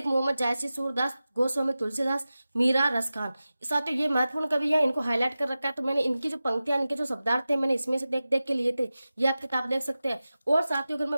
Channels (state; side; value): inverted; both; correlation -0.95